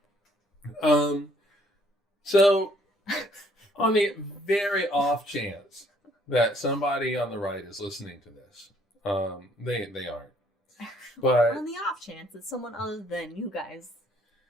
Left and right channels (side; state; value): both; normal; correlation 0.64